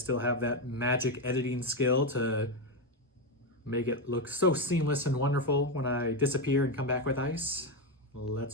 have that magic editing skill to make it look so seamless and wonderful when I disappear and come back with ice.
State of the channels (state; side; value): normal; both; correlation 0.09